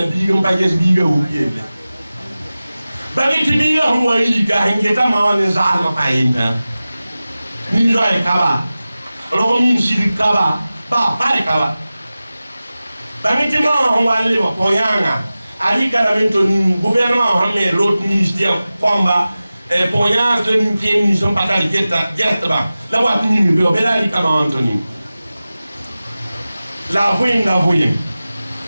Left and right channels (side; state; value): both; inverted; correlation -0.96